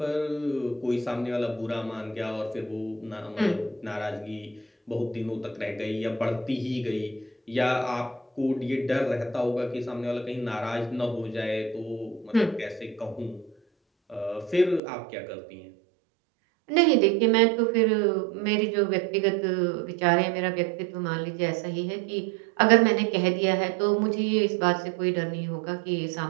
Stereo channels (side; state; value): left; drops out; at 14.8 s